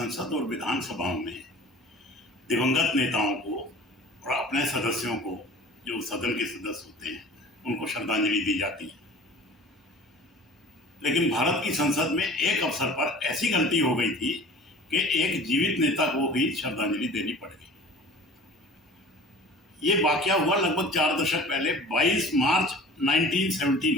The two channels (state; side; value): normal; both; correlation 0.43